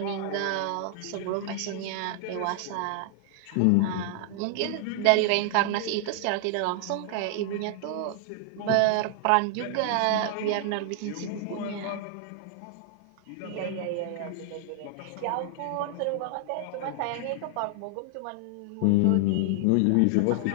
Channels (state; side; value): different; both; correlation 0.00